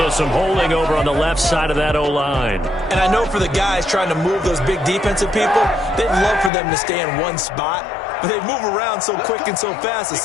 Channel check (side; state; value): right; drops out; at 6.5 s